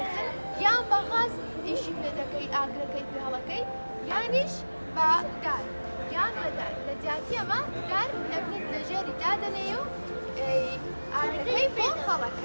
یان بە غاز ئیشی پێ دەکەی ئاگرەکەی پێ هەڵەکەی یانیش بە گار یان بەدار لە جیاتی ئەمە گار دەبنێت لە ژێری دادەنێ و ئاگرەکەی پێ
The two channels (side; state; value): both; inverted; correlation -1.00